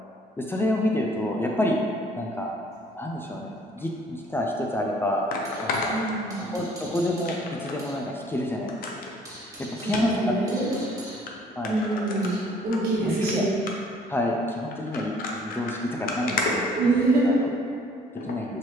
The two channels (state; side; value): normal; both; correlation 0.58